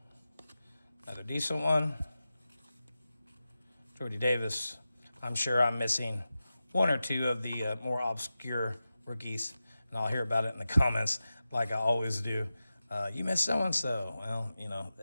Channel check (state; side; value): inverted; both; correlation -0.93